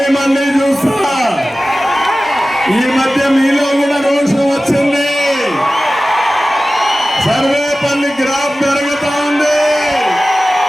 చూస్తా. ఈ మధ్య మీలో కూడా రోషం వచ్చింది. సర్వేపల్లి గ్రాఫ్ పెరుగుతా ఉంది.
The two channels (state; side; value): normal; both; correlation 0.96